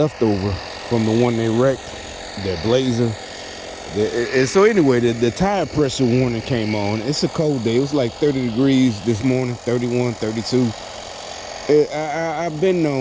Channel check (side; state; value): both; identical; correlation 1.00